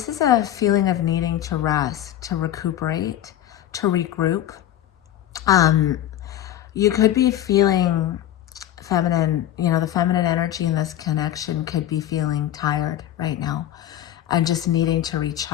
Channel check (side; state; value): right; quieter; 12.0 dB